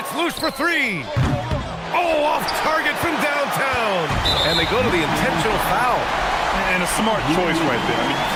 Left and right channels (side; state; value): both; identical; correlation 1.00